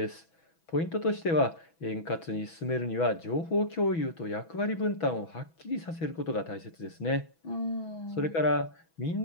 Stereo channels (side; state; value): right; late; 6.1 ms